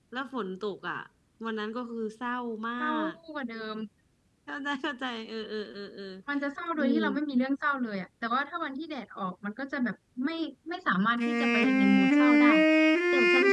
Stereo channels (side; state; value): both; identical; correlation 1.00